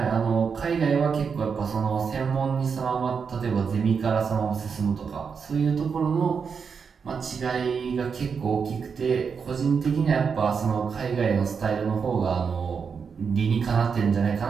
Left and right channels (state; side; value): quieter; left; 6.0 dB